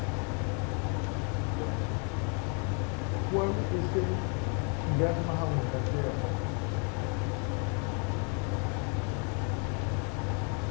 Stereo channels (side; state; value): right; quieter; 37.8 dB